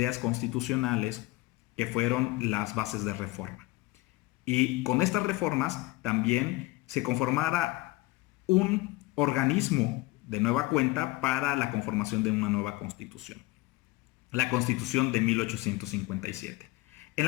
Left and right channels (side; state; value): right; quieter; 20.1 dB